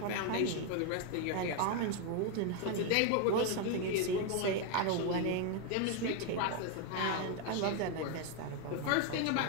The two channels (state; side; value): different; both; correlation 0.01